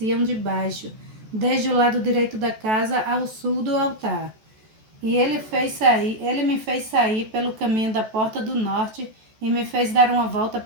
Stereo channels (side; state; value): left; late; 14 ms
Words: de baixo, desde o lado direito da casa ao sul do altar. E ele me fez sair pelo caminho da porta do norte, e me fez dar uma volta